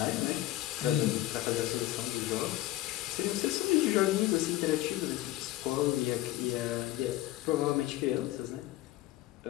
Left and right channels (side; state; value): right; quieter; 15.8 dB